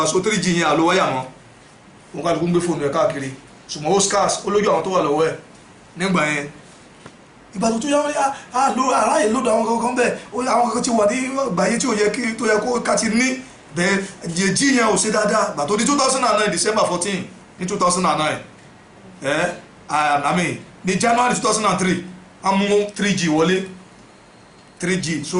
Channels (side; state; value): both; identical; correlation 1.00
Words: so 3G yẹn àlọ́ wáyà mọ́ wọ́n kálukú ń gbé fóònù ẹ̀ káàkiri ṣùgbọ́n ó scarce ó lójú àwọn tó wà lọ́wọ́ ẹ̀ nígbà yẹn ìgbà tó yá wọ́n aráyè lódò àwọn kankan bẹ́ẹ̀ àwọn kankan ti wà ní gbàyé tí ó yẹ kó ká ti ní bẹ́ẹ̀ jẹ́jì yẹn ò ṣe dáadáa ìgbà tó di 2009 December 14 ní 2009 I mean ní January 2003 a mú 3G wọlé 3G